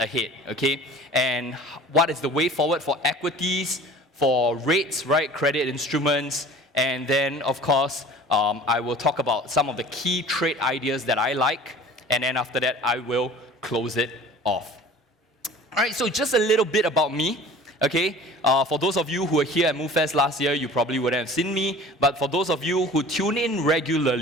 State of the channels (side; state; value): both; normal; correlation 0.44